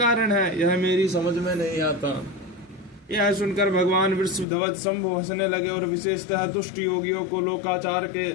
है? यह मेरी समझ में नहीं आता। यह सुनकर भगवान वृषभध्वज शंभु हंसने लगे और विशेषतः दुष्ट योगियों को लोकाचार के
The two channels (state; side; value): drops out; right; at 4.5 s